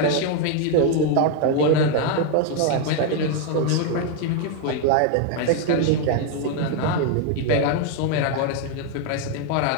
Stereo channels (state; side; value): different; both; correlation 0.01